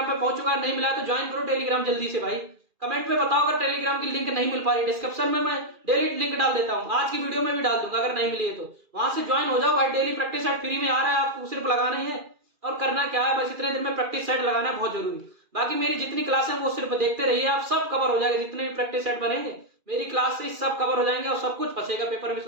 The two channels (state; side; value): late; left; 2.4 ms